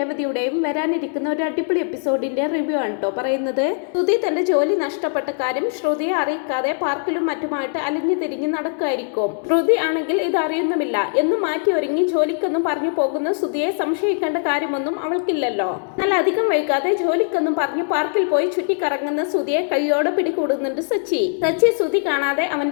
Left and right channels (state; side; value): silent; right; 58 dB below the other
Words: വരാനിരിക്കുന്ന ഒരു അടിപൊളി എപ്പിസോഡിന്റെ റിവ്യൂ ആണ് കേട്ടോ പറയുന്നത്. ശ്രുതി തന്റെ ജോലി നഷ്ടപ്പെട്ട കാര്യം ശ്രുതിയെ അറിയിക്കാതെ പാർക്കിലും മറ്റുമായിട്ട് അലിഞ്ഞു തിരിഞ്ഞ് നടക്കുമായിരിക്കും. ശ്രുതി ആണെങ്കിൽ ഇത് അറിയുന്നുമില്ല എന്നും മാറ്റി ഒരുങ്ങി ജോലിക്കൊന്നും പറഞ്ഞു പോകുന്ന ശ്രുതിയെ സംശയിക്കേണ്ട കാര്യമൊന്നും അവൾക്കില്ലല്ലോ. എന്നാൽ അധികം വൈകാതെ ജോലിക്കൊന്നും പറഞ്ഞു പാർക്കിൽ പോയി ചുറ്റിക്കറങ്ങുന്ന ശ്രുതിയെ കൈയോടെ പിടികൂടുന്നുണ്ട് സച്ചി. ശ്രുതി കാണാതെ